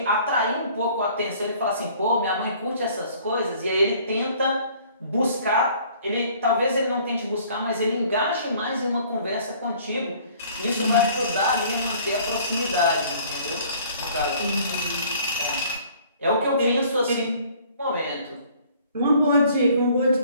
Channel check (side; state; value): both; inverted; correlation -0.55